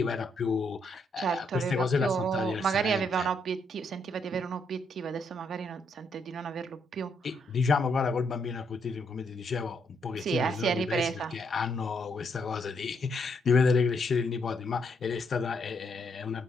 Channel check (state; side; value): normal; both; correlation 0.75